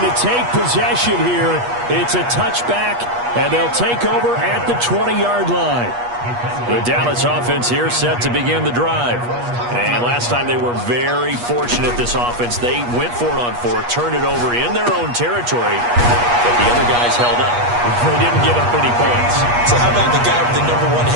to take possession here. It's a touchback, and they'll take over at the 20-yard line. The Dallas offense here set to begin the drive. And last time they were very fortunate, this offense. They went for it on 4, turned it over in their own territory, but the other guys held up. They didn't give up any points. So how about the guy with the #1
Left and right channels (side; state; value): left; late; 8.3 ms